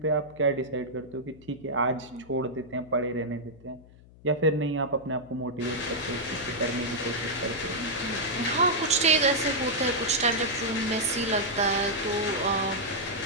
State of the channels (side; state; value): left; noise; hum, 23 dB below the sound